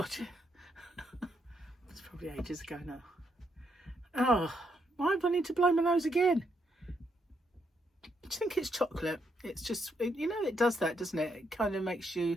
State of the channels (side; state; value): both; normal; correlation 0.77